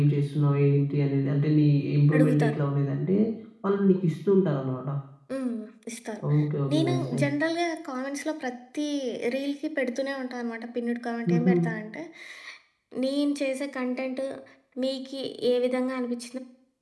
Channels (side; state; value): both; identical; correlation 1.00